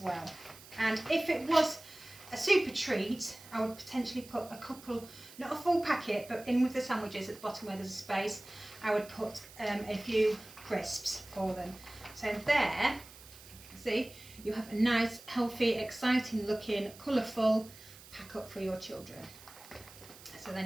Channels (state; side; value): noise; right; hiss, 19 dB below the sound